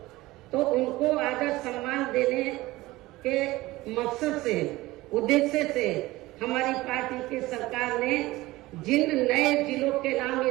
तो उनको आदर सम्मान देने के मकसद से, उद्देश्य से हमारी पार्टी की सरकार ने जिन नए जिलों के नाम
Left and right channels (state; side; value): quieter; left; 18.8 dB